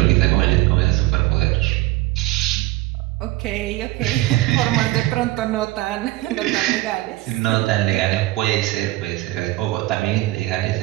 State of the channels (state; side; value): quieter; left; 18.1 dB